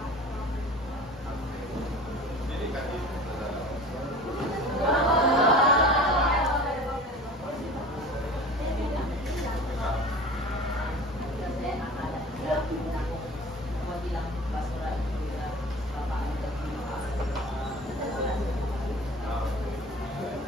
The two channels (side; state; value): both; normal; correlation 0.40